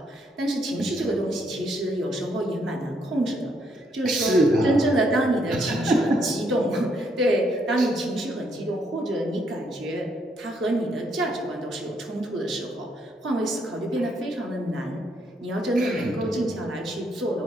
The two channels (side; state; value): both; normal; correlation 0.73